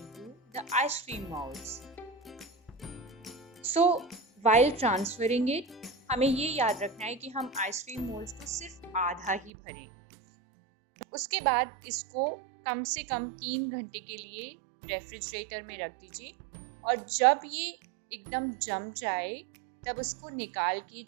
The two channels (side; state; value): left; drops out; at 9.5 s